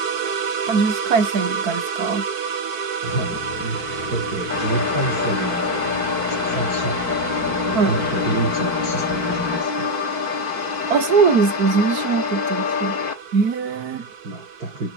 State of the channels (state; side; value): late; left; 4.5 ms